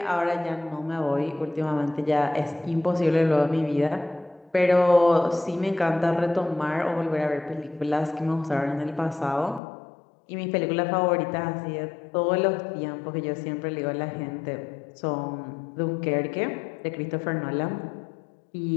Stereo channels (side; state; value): right; drops out; at 9.6 s